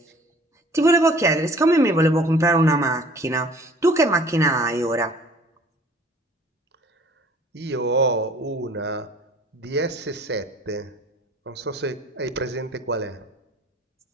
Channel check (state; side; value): normal; both; correlation 0.51